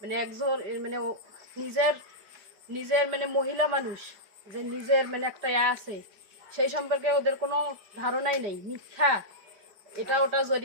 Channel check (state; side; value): late; left; 5.1 ms